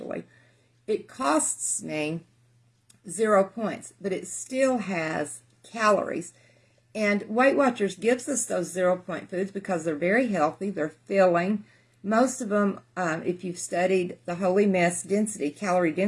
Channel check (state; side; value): identical; both; correlation 1.00